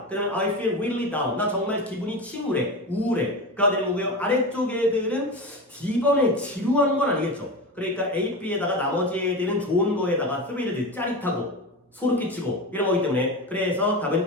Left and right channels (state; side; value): normal; both; correlation 0.24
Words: 그 다음에 I feel really down, 나 정말 기분이 침울해, 우울해가 되는 거고요. 아래쪽 애들은 D번에 지루한 건 아니겠죠. 그러니까 A, B에다가 나머지 애들은 좋은 거에다가 thrilled, 짜릿하고 소름 끼치고 이런 거기 때문에 그래서